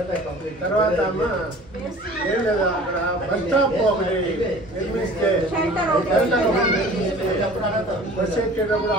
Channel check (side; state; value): both; normal; correlation 0.45